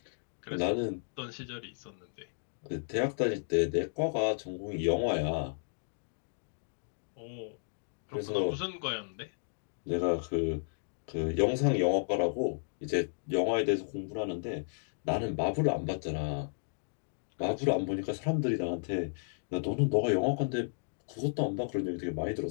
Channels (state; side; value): silent; right; digital silence